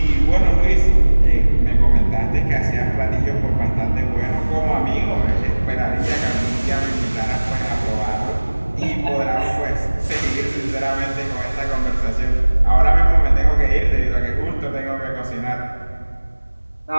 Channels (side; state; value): both; inverted; correlation -1.00